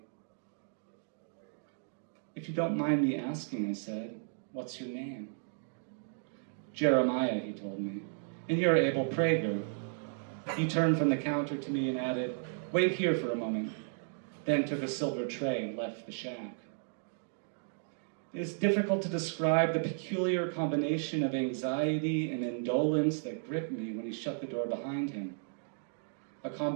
If you don't mind me asking, I said, what's your name? Jeremiah, he told me, and you're Abel Prager. He turned from the counter to me and added, wait here for a moment, then took a silver tray and left the shack. It is difficult to describe the peculiar combination of anxiety and indolence that gripped me when he shut the door behind him. A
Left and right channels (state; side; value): silent; left; digital silence